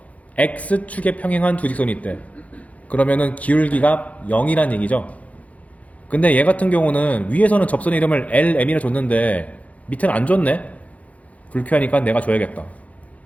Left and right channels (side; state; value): right; late; 0.068 ms